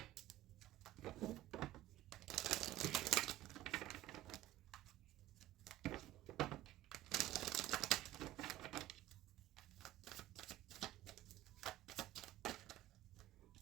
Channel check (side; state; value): left; quieter; 14.8 dB